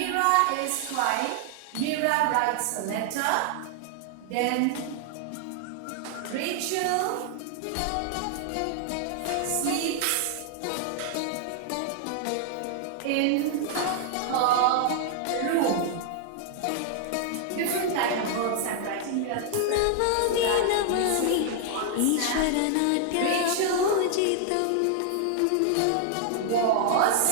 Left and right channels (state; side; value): different; both; correlation 0.00